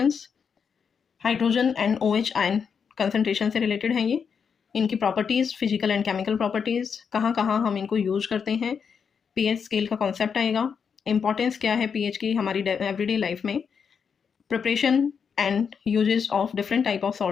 hydrogen and OH ion concentration से रिलेटेड हैं ये, इनकी properties, physical and chemical properties, कहाँ कहाँ हम इनको यूज करते हैं, pH स्केल का कॉन्सेप्ट आएगा, इंपॉर्टेंस क्या है pH की हमारी एवरीडे लाइफ में, preparation and uses of different type of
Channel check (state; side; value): quieter; right; 6.5 dB